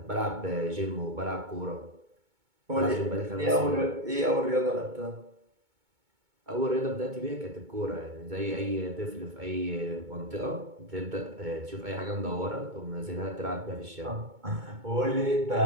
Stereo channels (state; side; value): late; left; 2.2 ms